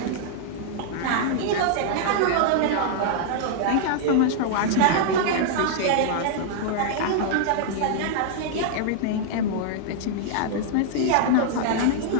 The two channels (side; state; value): both; different; correlation -0.01